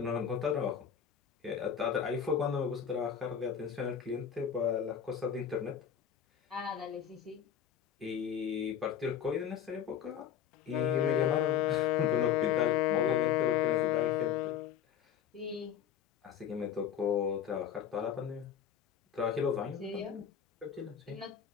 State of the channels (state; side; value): quieter; right; 8.6 dB